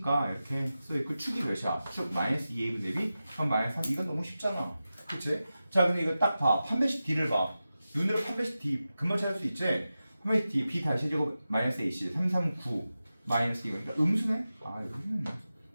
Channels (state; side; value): inverted; both; correlation -0.93